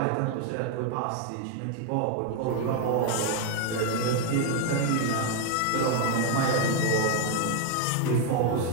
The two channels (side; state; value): both; different; correlation 0.01